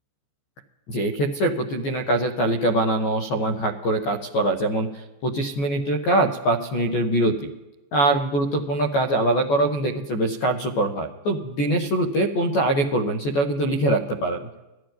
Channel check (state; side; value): late; right; 14 ms